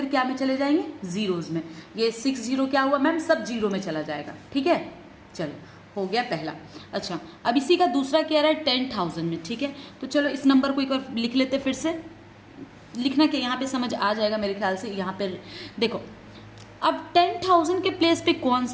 क्या में चले जाएंगे, जीरोज में। ये 60 क्या हुआ मैम, सब जीरो में चला जाएगा, ठीक है। चलो, हो गया पहला। अच्छा, अब इसी का दूसरा क्या रहा है 10,000 में, ठीक है। तो चलो इस नंबर को एक बार लिख लेते, फिर से लिखना कि यहाँ पे समझ आ जाएगा मेरे ख्याल से। यहाँ पे देखो, अब 10,000 के प्लेस पे कौन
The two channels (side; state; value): both; identical; correlation 1.00